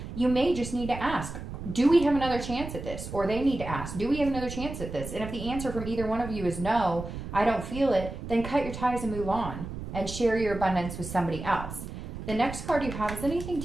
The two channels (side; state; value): right; noise; rumble, 9 dB below the sound